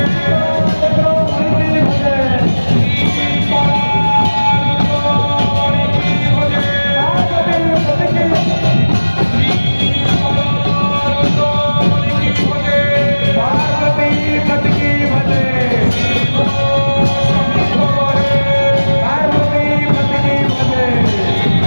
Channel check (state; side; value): inverted; both; correlation -1.00